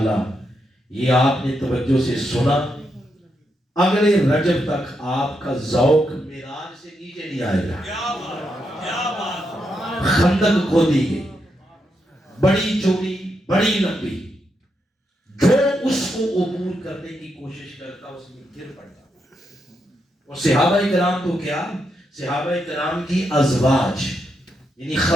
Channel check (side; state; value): both; normal; correlation 0.82